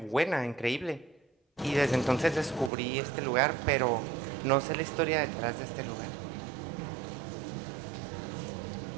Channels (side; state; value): left; drops out; at 2.7 s